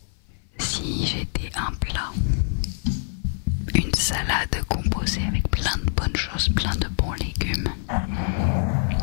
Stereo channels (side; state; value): right; silent; 56 dB below the other